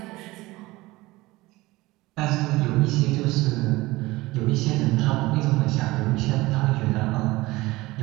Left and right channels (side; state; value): left; quieter; 20.0 dB